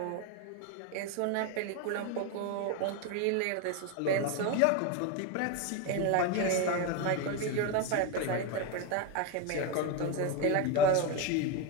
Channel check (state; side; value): different; both; correlation 0.03